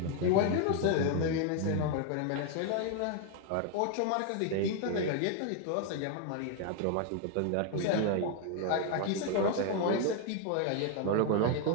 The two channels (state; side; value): different; both; correlation 0.01